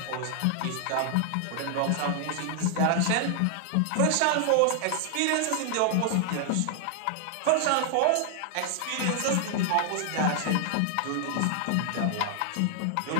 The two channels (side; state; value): both; different; correlation 0.00